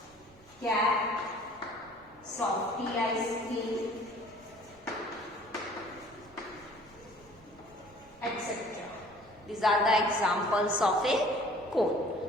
cap, softy ice cream, etc. These are the examples of a cone.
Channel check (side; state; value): both; normal; correlation 0.52